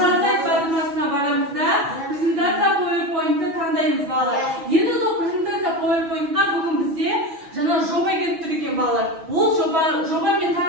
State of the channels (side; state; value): left; late; 6.1 ms